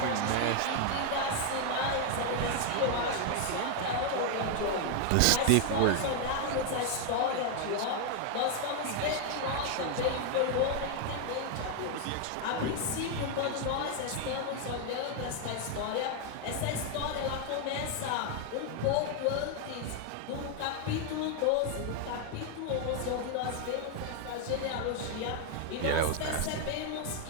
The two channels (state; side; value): different; both; correlation 0.01